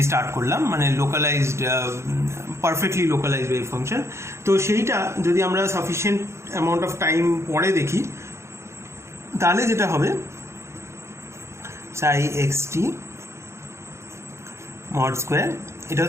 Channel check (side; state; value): left; late; 0.13 ms